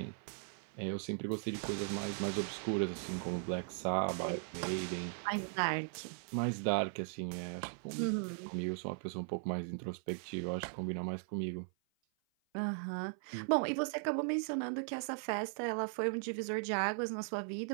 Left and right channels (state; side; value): silent; left; 52 dB below the other